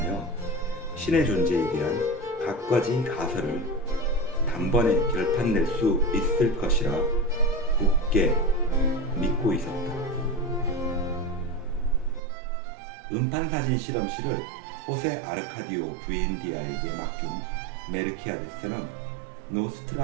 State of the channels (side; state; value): left; drops out; at 12.2 s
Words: 신의 존재에 대한 갖가지 가설을 단번에 결판낼 수 있을 것이라 굳게 믿고 있었다. 음판사진 실험실을 호세 아르카디오 부엔디아에게 맡긴 메르키아데스는